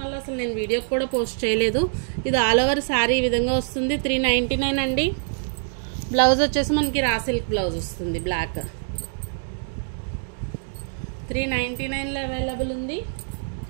వల్ల అసలు నేను వీడియో కూడా పోస్ట్ చేయలేదు. ఇది ఆల్ ఓవర్ శారీ ఈ విధంగా వస్తుంది. 399 అండి. బ్లౌజ్ వచ్చేసి మనకి రా సిల్క్ బ్లౌజ్ వస్తుంది, బ్లాక్. 399లో అవైలబుల్ ఉంది.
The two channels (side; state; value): left; silent; digital silence